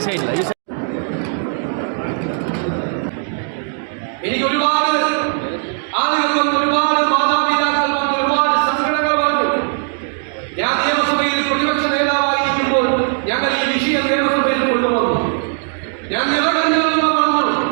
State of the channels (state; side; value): silent; left; 57 dB below the other